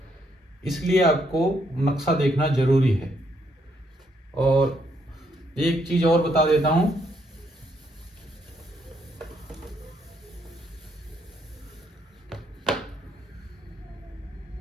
इसलिए आपको नक्शा देखना जरूरी है। और एक चीज और बता देता हूं,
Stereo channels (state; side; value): normal; both; correlation 0.73